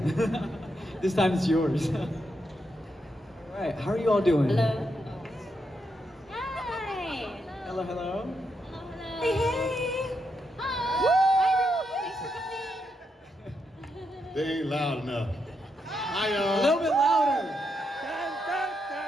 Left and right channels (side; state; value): both; normal; correlation 0.82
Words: This time it's yours. Alright, how are you all doing? Hello. Hi. Hello, hello. Hello, hello. Hey, hey. Hi. Hi, everyone. Thanks for coming. They ain't loud enough. Hi, A y'all. little bit louder.